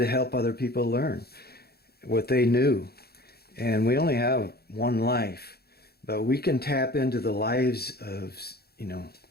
help other people learn what they knew. And we only have one life, but we can tap into the lives of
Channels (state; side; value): late; right; 0.46 ms